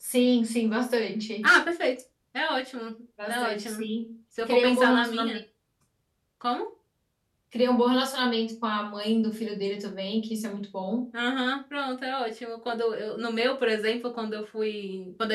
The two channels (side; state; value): both; identical; correlation 1.00